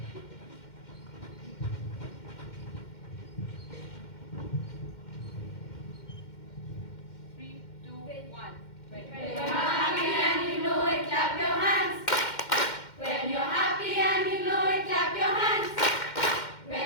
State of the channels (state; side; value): late; right; 2.1 ms